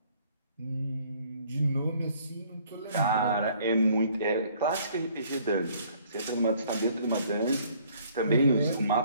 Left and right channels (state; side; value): inverted; both; correlation -0.60